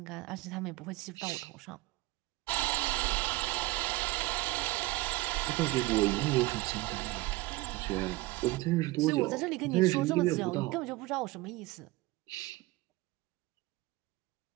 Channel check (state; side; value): quieter; left; 20.2 dB